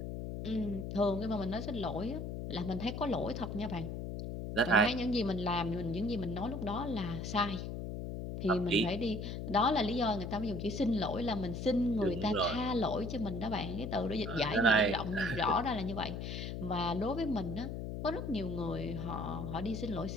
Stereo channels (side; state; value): left; noise; hum, 5 dB below the sound